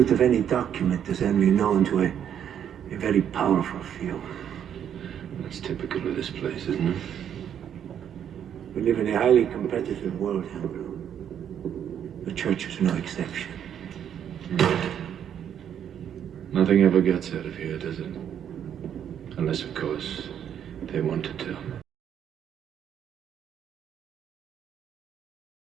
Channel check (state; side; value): quieter; left; 9.2 dB